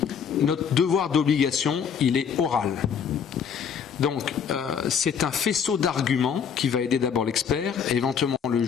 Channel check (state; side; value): quieter; right; 7.2 dB